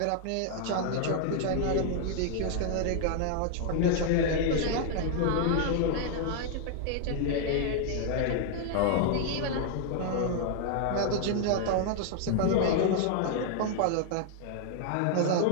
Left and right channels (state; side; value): different; both; correlation 0.00